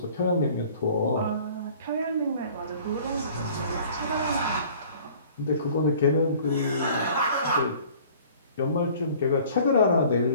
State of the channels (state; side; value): inverted; both; correlation -0.50